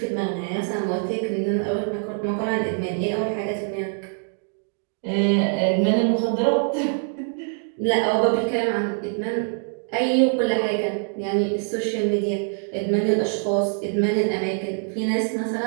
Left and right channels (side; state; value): left; silent; 56 dB below the other